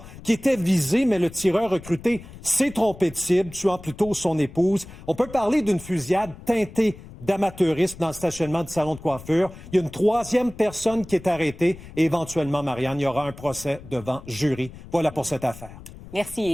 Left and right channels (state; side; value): noise; left; rumble, 17 dB below the sound